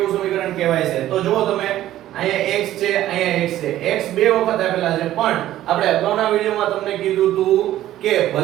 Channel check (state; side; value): quieter; left; 13.5 dB